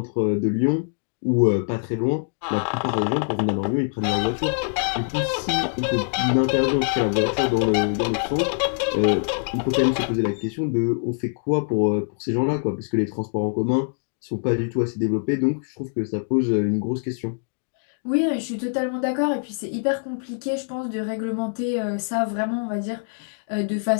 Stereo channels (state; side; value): silent; right; digital silence